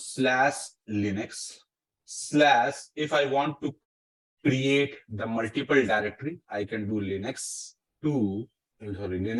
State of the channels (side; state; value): both; identical; correlation 1.00